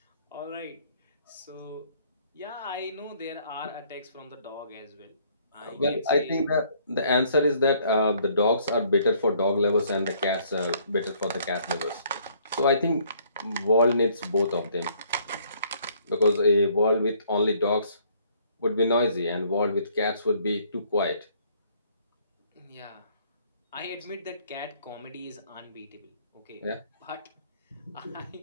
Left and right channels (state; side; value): inverted; both; correlation -0.63